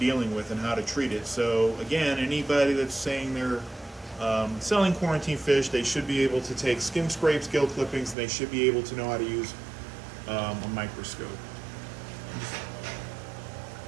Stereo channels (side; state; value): left; drops out; at 8.2 s